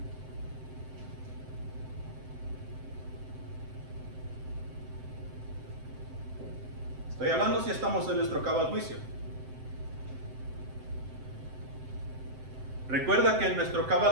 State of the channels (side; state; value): left; late; 7.7 ms